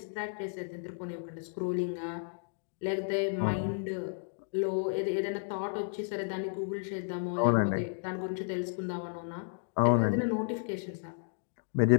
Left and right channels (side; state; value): right; silent; digital silence